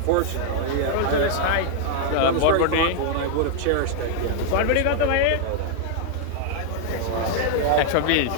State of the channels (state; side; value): different; both; correlation 0.00